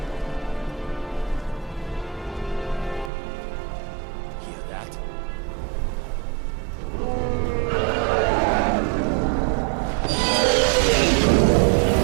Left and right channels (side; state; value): left; drops out; at 3.1 s